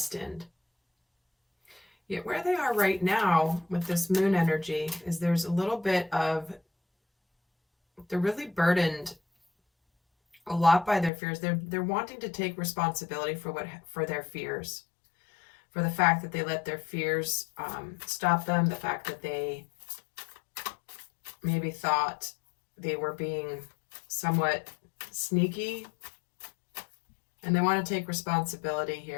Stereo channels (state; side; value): drops out; right; at 11.1 s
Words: Yet where they are right now with this moon energy is there's a little bit of, they're really burdened a lot by their fears. They're wanting to take responsibility for their fears, for the fact that they let their fears stop them, the fact that they maybe thought they were being somewhat sneaky, and they want to take responsibility